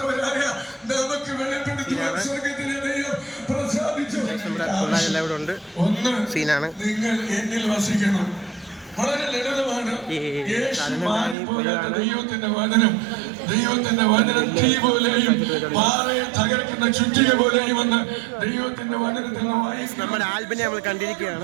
നമ്മുടെ പിള്ളേരെല്ലാം ഇവിടെ ഉണ്ട്. സീനാണ്. ദൈവത്തിന്റെ വചനം തീ പോലെയും പാറയെ തകർക്കുന്ന ചുറ്റിക പോലെയും വന്ന് ദൈവത്തിന്റെ വചനത്തിൽ നമ്മുടെ ആൽബിനെ നമ്മൾ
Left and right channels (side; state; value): left; drops out; at 11.4 s